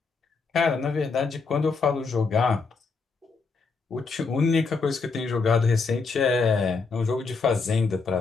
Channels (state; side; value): quieter; right; 4.5 dB